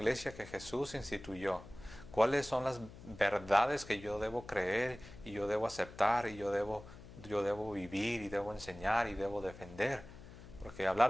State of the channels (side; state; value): left; noise; hum, 16 dB below the sound